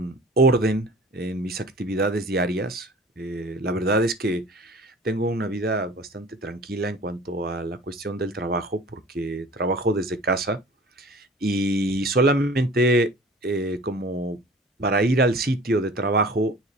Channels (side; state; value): both; normal; correlation 0.44